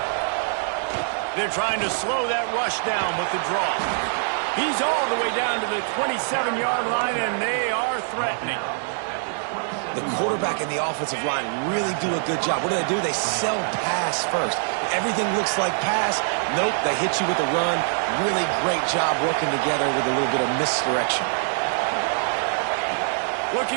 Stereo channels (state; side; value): silent; left; digital silence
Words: They're trying to slow that rush down with the draw. He's all the way down to the 27-yard line, and they are threatening. The quarterback and the offensive line really do a good job. What do? They sell pass first. Everything looks like pass. Nope, they hit you with a run. Really great job working together with a little bit of misdirection.